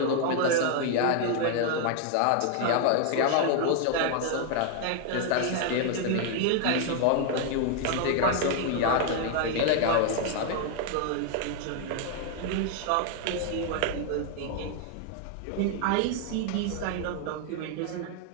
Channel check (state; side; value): different; both; correlation 0.00